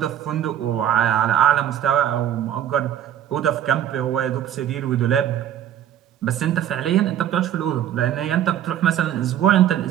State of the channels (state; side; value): quieter; left; 10.8 dB